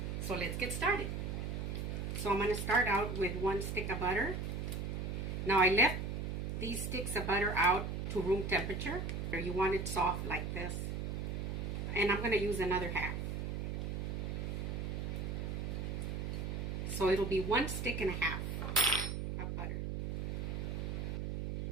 So let's get started. So I'm going to start out with 1 stick of butter. Now I left these sticks of butter out to room temperature. You want it soft like this. And I'm going to use another half. So it'll be 1 stick and a half of butter.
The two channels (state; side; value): noise; right; hum, 3 dB below the sound